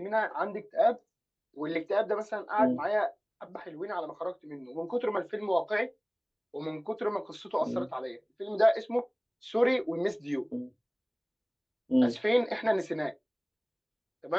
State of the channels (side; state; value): both; identical; correlation 1.00